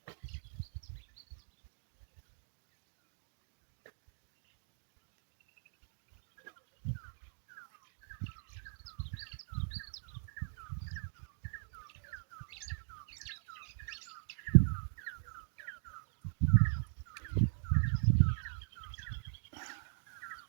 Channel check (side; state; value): left; silent; digital silence